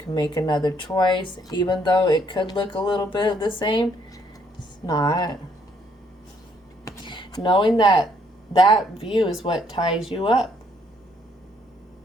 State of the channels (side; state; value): both; normal; correlation 0.69